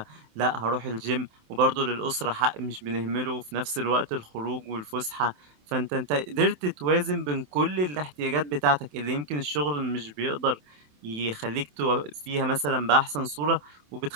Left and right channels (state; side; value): late; left; 27 ms